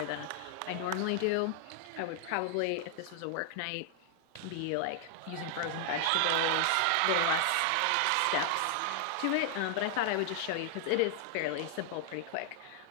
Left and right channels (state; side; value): different; both; correlation 0.00